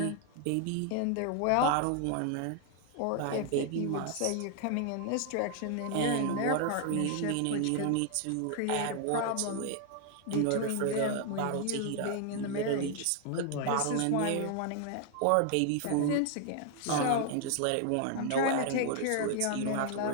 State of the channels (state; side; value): different; both; correlation 0.00